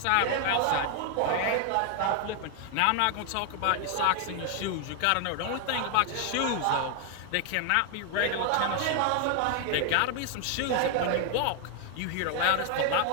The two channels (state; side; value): different; both; correlation 0.00